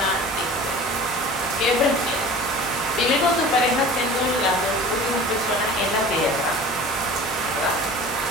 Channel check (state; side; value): normal; both; correlation 0.40